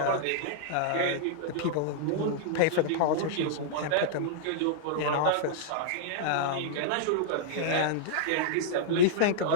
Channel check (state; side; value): different; both; correlation -0.02